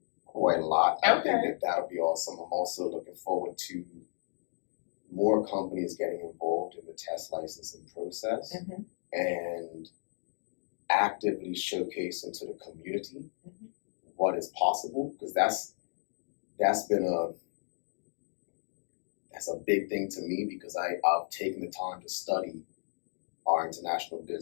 quite a lot. I think that'll be awesome. I'm also looking forward to more companies getting involved in the test licensing process and actively showcasing to the community what is possible, because that's a big thing to me, because I've taken the time to study our international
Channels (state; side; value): silent; right; digital silence